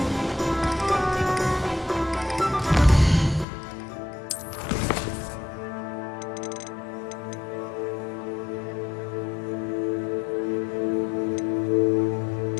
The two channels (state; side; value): drops out; right; at 3.5 s